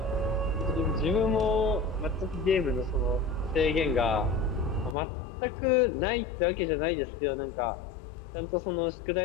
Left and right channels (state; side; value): drops out; right; at 5.0 s